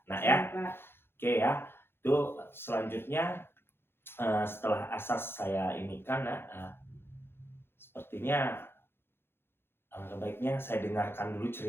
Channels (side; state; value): right; late; 0.11 ms